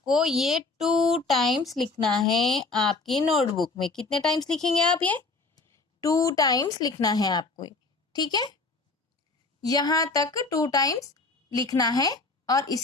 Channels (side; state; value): right; quieter; 3.7 dB